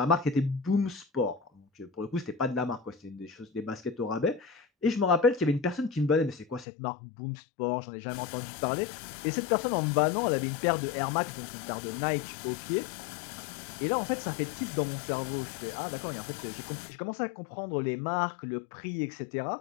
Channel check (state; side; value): drops out; right; at 6.7 s